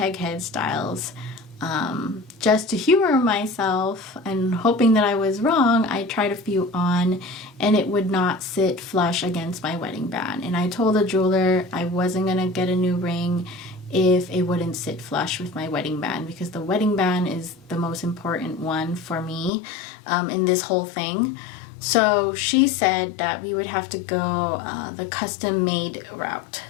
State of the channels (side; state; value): right; drops out; at 19.5 s